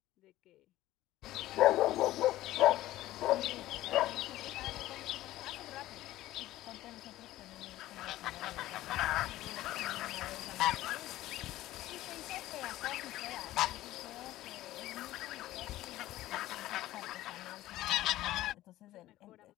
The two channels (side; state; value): right; quieter; 15.5 dB